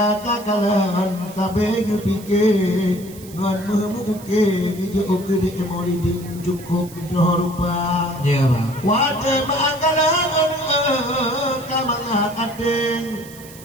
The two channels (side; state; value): right; noise; hiss, 19 dB below the sound